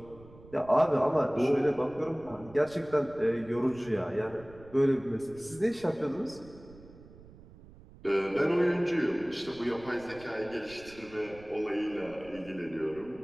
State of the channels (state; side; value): noise; right; rumble, 21 dB below the sound